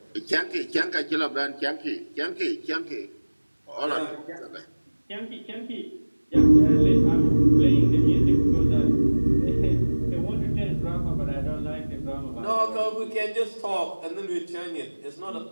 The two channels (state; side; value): inverted; both; correlation -1.00